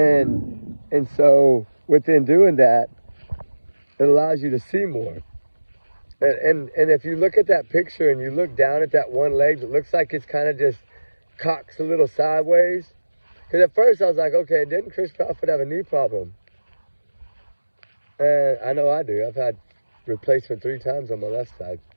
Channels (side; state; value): both; inverted; correlation -1.00